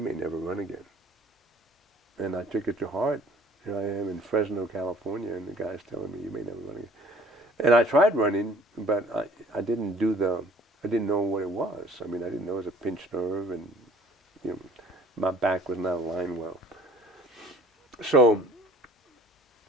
never run again. And I took it to heart. Here I am in Fresno, California, and the guy's telling me, you may never run again. And I tried running, but I didn't know what it was. I mean, I didn't know it was a pinched nerve, and my back was not aligned well. So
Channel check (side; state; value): both; normal; correlation 0.54